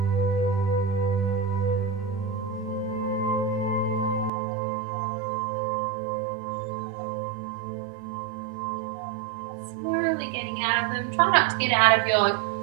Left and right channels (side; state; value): left; drops out; at 4.3 s